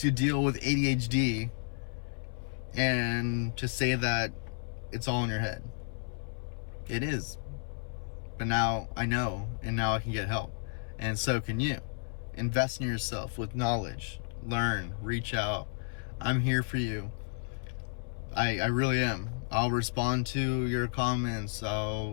deal with ADHD and to say that it's all in your head. It is. But now I know, and now I can get help. And so can you. Invest in yourself with knowledge. Learn. Reach out. I'm here for you. I really am. I'll respond to your comments.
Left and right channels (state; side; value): silent; right; 56 dB below the other